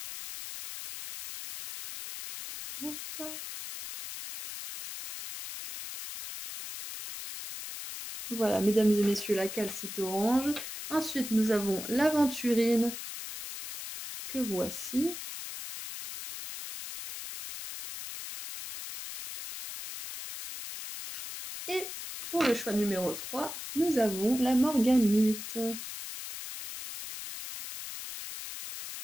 Hop. Voilà, mesdames et messieurs, la calcite orange. Ensuite, nous avons l'aventurine, que voici. Et pour le choix numéro 3, nous avons la morganite.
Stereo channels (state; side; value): noise; left; hiss, 9 dB below the sound